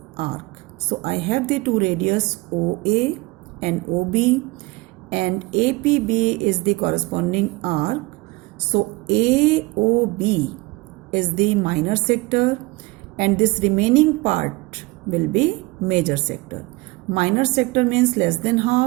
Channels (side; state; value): left; quieter; 23.2 dB